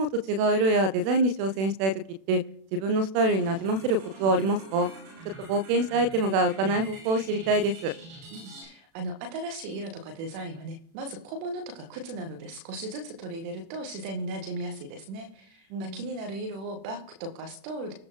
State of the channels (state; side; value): late; left; 36 ms